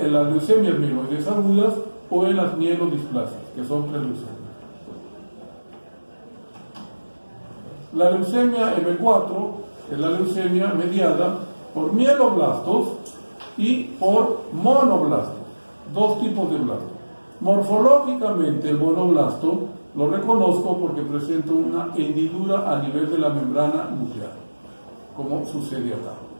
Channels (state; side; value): inverted; both; correlation -1.00